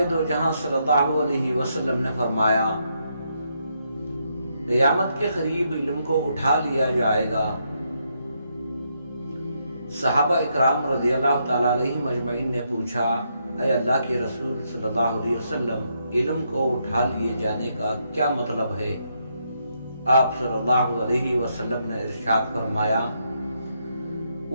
دو جہاں صلی اللہ علیہ وسلم نے فرمایا، قیامت کے قریب علم کو اٹھا لیا جائے گا۔ صحابہ اکرام رضی اللہ تعالیٰ علیہ مجمعین نے پوچھا، اے اللہ کے رسول صلی اللہ علیہ وسلم، علم کو اٹھا لیے جانے کا کیا مطلب ہے؟ آپ صلی اللہ علیہ وسلم نے ارشاد فرمایا،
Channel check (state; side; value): inverted; both; correlation -0.78